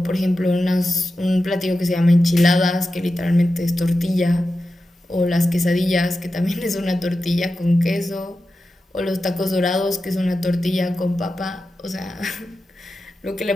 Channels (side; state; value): both; normal; correlation 0.92